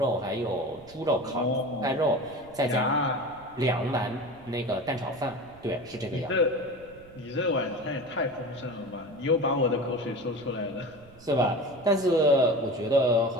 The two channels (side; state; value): right; noise; rumble, 23 dB below the sound